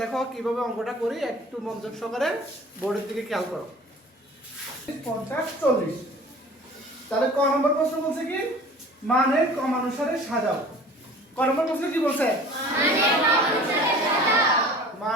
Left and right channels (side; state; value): both; normal; correlation 0.45